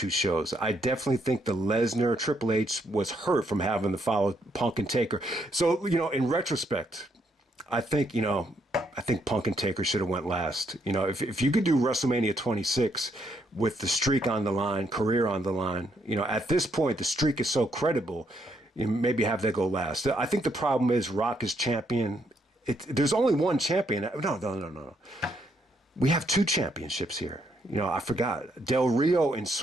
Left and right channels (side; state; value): both; normal; correlation 0.74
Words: shows. I definitely think the Lesnar Triple H was hurt from having to follow Punk and Taker. So, in retrospect, I think Punk and Taker should have went last. If you could do WrestleMania 26 with the streak on the line, career on the line, at this point, the streak is so credible, maybe have that go last. I think the problem is Rock is champion. There's only one champion. No. We have two championships here. I forgot. Del Rio and